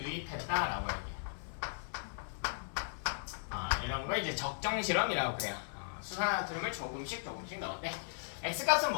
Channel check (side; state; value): right; silent; 53 dB below the other